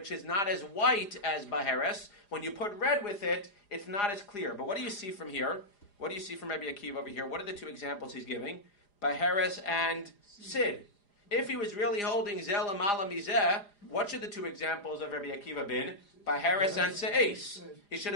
is not as white as baheres. When you put red with it, it's not as clear. But what do you see from here? What do you see from Rabbi Akiva over here? What are the two examples he's giving? Baheres and sid. If he was really holding zelam ala mizeh, what should the two examples of Rabbi Akiva been? Baheres and se'es. He should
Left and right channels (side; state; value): right; late; 4.9 ms